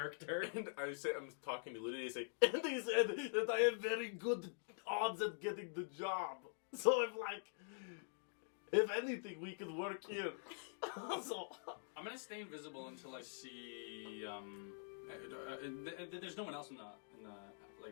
And I'm talking to Lydia, I say, and he said that I have very good odds at getting the job. So I'm like, if anything, we could work here. So I'm gonna stay invisible until I see. There's no one else in the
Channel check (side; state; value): right; silent; digital silence